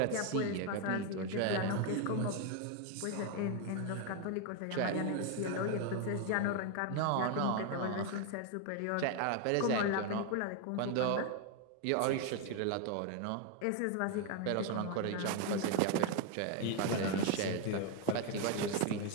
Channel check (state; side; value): different; both; correlation 0.01